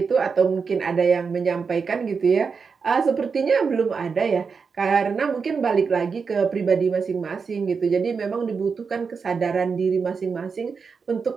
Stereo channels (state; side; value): quieter; left; 5.4 dB